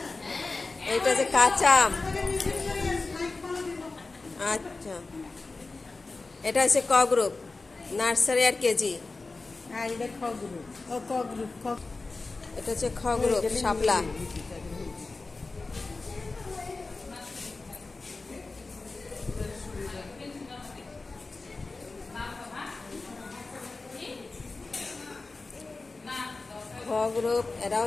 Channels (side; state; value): right; quieter; 3.6 dB